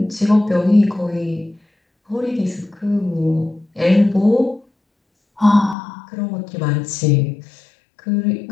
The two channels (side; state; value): right; drops out; at 5.8 s